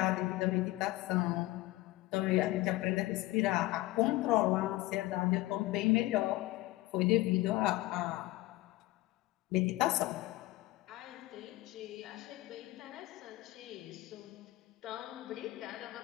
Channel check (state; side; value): quieter; right; 18.7 dB